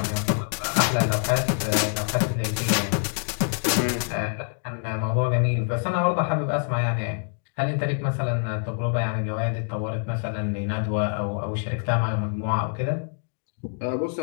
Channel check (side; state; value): right; silent; 58 dB below the other